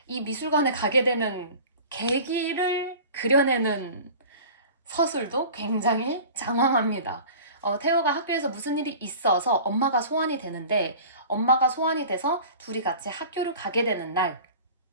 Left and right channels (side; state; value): both; inverted; correlation -0.40